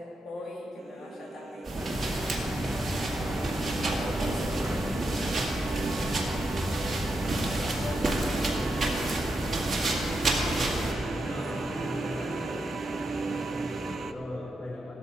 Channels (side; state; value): both; normal; correlation 0.85